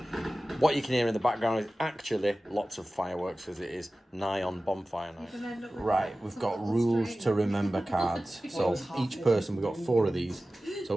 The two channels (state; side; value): normal; both; correlation 0.96